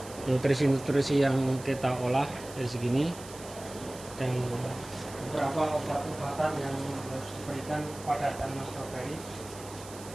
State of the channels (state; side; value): noise; right; hiss, 16 dB below the sound